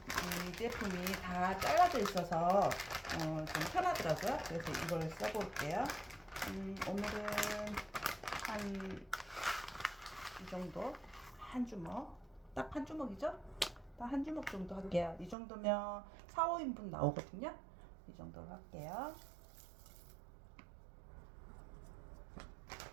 제품이 다 잘라져 있어서 좀 편하더라고요. 그래서 이걸 써볼게요. 오늘은 한 이 정도, 한 주먹, 딱 한 주먹이죠? 딱 한 주먹 정도 할게요. 이 정도면 4, 5인분 나오거든요. 이 정도로 할게요.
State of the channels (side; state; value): left; drops out; at 15.4 s